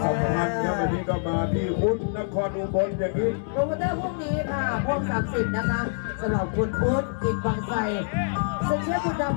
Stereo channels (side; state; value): right; silent; digital silence